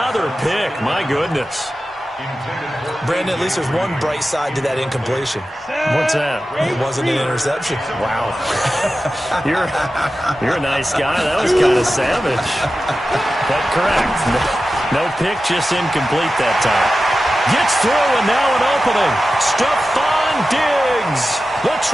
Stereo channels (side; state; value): both; normal; correlation 0.93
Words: pick. My goodness. Brandon, at least there's one bright side to that incompletion. What's that? It wasn't an interception. Wow. You're a nice guy. That was kind of savage. But correct. No pick, just incomplete that time. Gets through, and now an opening. Stephon Diggs. The